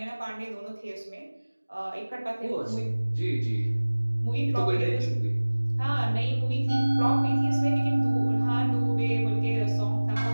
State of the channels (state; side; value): inverted; both; correlation -1.00